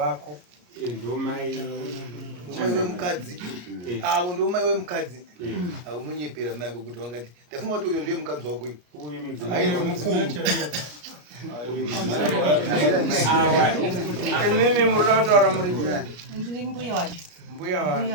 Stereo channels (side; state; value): left; late; 34 ms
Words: ndomai umai wemukadzi avo ndomai wemukadzi unonyepera mai ako kuti wangati ndafunga kuti uyo ndiye mukadzi wako uyu ainzi mukuru imimi murina kutaura muri ndiri mbuya wacho mbuya wa